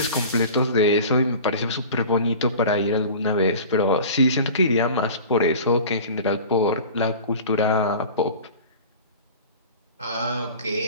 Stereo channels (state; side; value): inverted; both; correlation -0.39